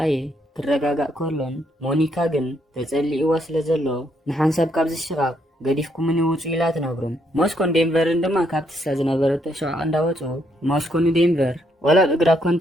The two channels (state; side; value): normal; both; correlation 0.74